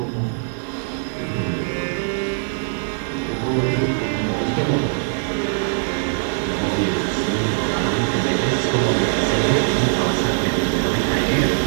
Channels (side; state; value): left; silent; 58 dB below the other